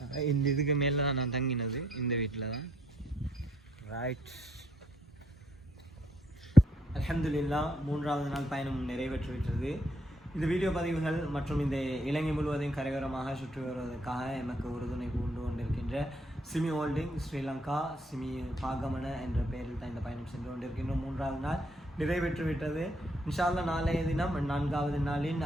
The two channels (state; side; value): normal; both; correlation 0.70